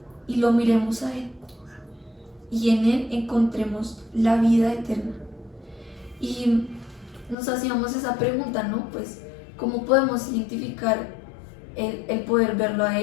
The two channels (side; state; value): right; drops out; at 7.4 s